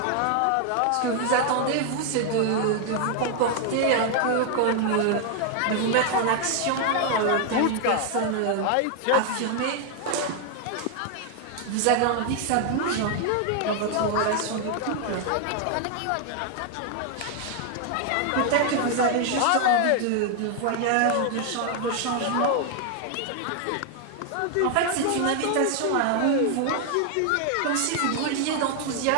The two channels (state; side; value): different; both; correlation 0.00